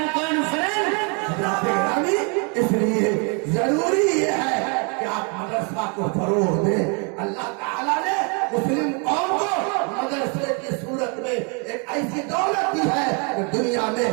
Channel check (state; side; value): quieter; left; 35.7 dB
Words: اس لیے ضروری یہ ہے کہ آپ مدرسہ کو فروغ دیں۔ اللہ تعالیٰ نے مسلم قوم کو مدرسے کی صورت میں ایک ایسی دولت دی ہے کہ دنیا میں